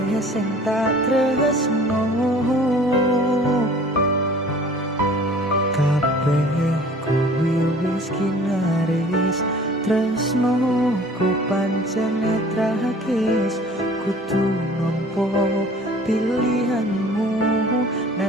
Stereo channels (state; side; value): normal; both; correlation 0.49